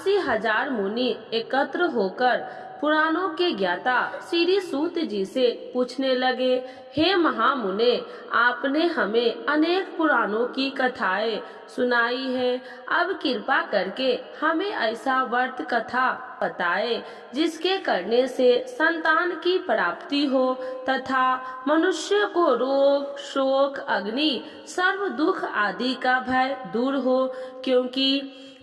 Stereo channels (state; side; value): identical; both; correlation 1.00